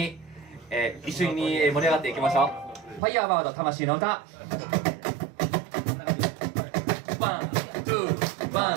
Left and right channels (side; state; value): left; drops out; at 3.0 s